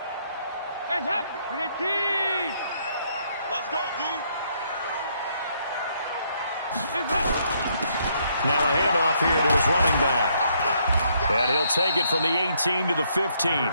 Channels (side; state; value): both; inverted; correlation -0.71